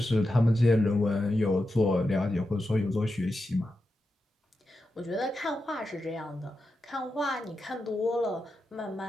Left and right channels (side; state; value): both; normal; correlation 0.89